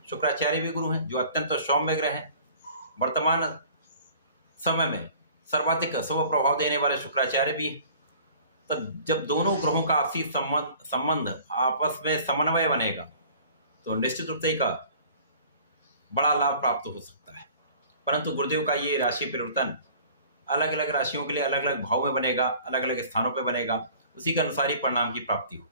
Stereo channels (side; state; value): both; inverted; correlation -0.48